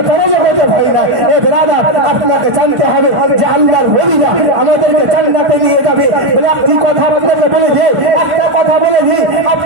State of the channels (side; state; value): left; late; 1.4 ms